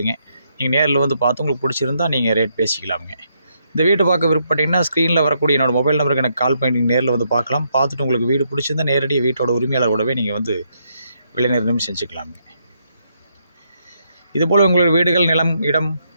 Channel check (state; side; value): inverted; both; correlation -0.76